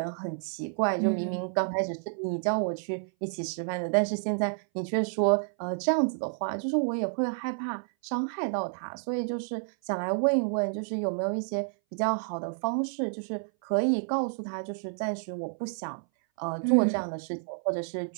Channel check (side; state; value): left; silent; 58 dB below the other